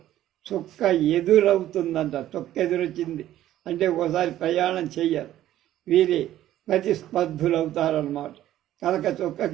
చుక్క ఎదురవుతుందంట. చుక్క ఎదురొచ్చింది అంటే ఒకసారి ప్రయాణం చెయ్యాలి. వీరి ప్రతిస్పర్ధులు అవుతారన్నమాట. కనుక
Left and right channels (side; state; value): left; quieter; 13.1 dB